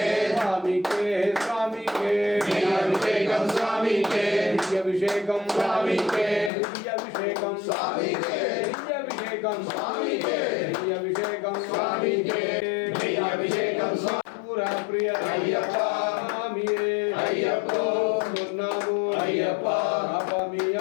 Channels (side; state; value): right; drops out; at 6.5 s